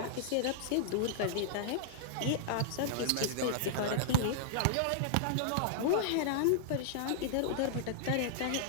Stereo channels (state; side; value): different; both; correlation -0.01